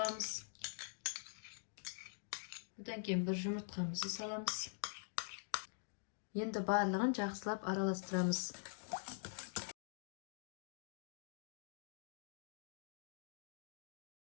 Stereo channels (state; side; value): silent; right; digital silence